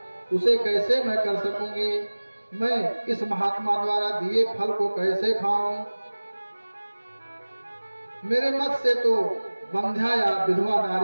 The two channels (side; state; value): both; inverted; correlation -1.00